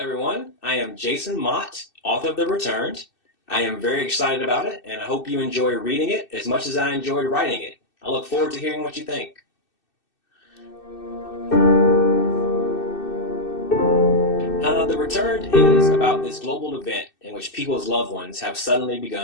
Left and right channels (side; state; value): right; late; 2.6 ms